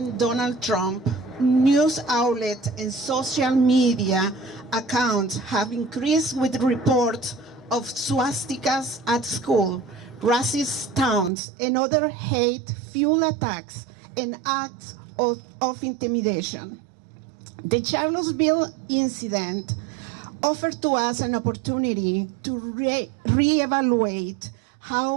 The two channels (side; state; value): left; drops out; at 11.3 s